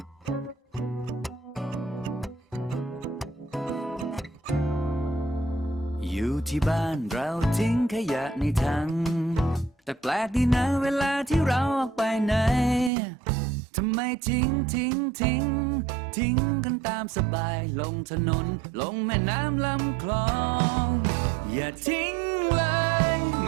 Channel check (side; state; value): left; drops out; at 12.9 s